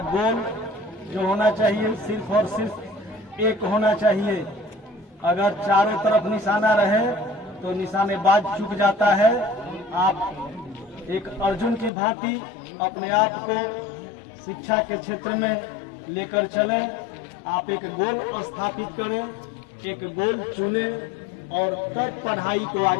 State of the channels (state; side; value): drops out; right; at 11.9 s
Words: गोल जो होना चाहिए, सिर्फ और सिर्फ एक होना चाहिए। अगर चारों तरफ निशाना रहे तो निशानेबाज चूक जाता है। आप एक अर्जुन की भांति अपने आप को शिक्षा के क्षेत्र में लेकर चलें। आप एक गोल स्थापित करें, एक गोल चुनें और तब पढ़ाई को